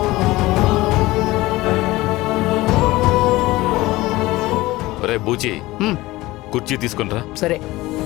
రే బూచి, కుర్చీ తీసుకునిరా. సరే.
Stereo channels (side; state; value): right; quieter; 19.1 dB